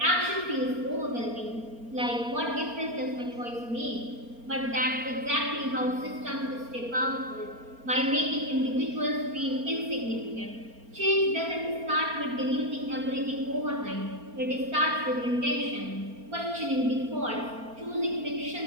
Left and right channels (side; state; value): left; late; 4.3 ms